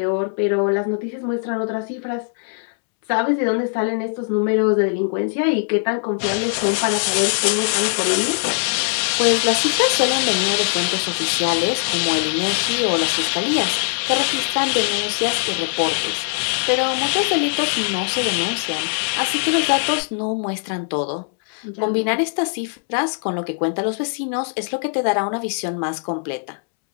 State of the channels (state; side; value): silent; right; 65 dB below the other